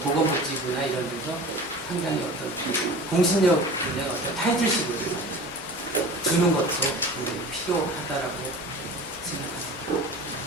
보건복지부나 이런 데서 상당히 어떤 공신력 있는 어떤 타이틀식을 주는 것도 필요하다라고 생각합니다.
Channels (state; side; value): normal; both; correlation 0.38